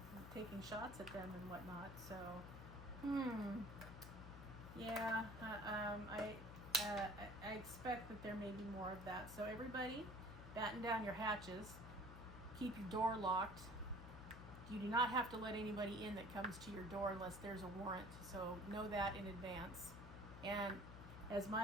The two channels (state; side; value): noise; left; hum, 11 dB below the sound